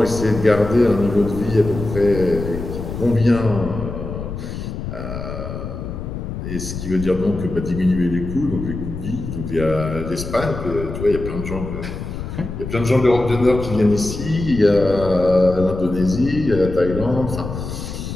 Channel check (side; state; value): left; noise; rumble, 7 dB below the sound